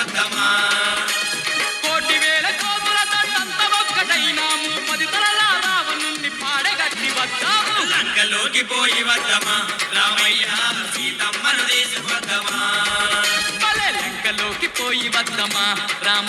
కోటి వేల కోతుల తంత ఒక్కటైనాము 10 తలల రావణుణ్ణి పాడగట్టి వద్దాము లంకలోకి పోయి వద్దమా రామయ్య సీతమ్మను తీసుకొద్దమా లంకలోకి పోయి వద్దమా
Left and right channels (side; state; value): both; identical; correlation 1.00